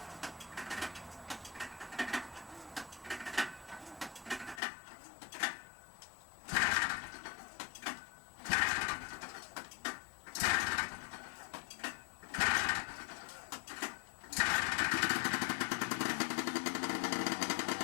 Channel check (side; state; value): right; drops out; at 4.6 s